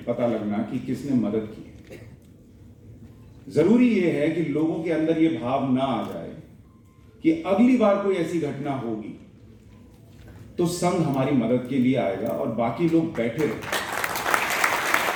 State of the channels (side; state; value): both; identical; correlation 1.00